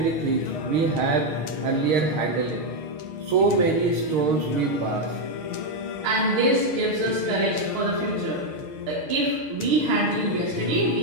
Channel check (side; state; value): left; late; 6.5 ms